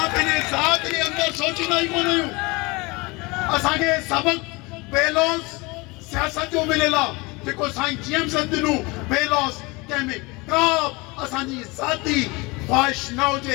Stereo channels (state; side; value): quieter; right; 25.3 dB